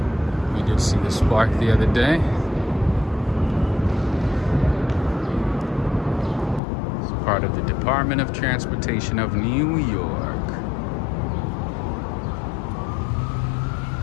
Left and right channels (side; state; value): right; drops out; at 6.6 s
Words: We did see the spark the other day. It's part of the Department of Transportation of New York.